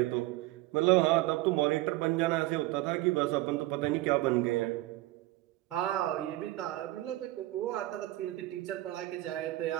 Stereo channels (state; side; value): quieter; left; 17.7 dB